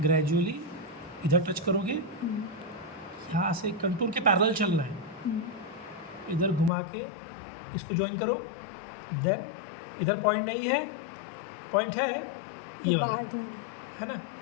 ग्रेजुअली इधर टच करोगे, यहाँ से कंटूर के पैरेलल चलना है, इधर घुमा के इसको ज्वाइन करो. देन इधर पॉइंट नहीं है, पॉइंट है ये वाला, है ना,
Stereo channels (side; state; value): right; drops out; at 6.7 s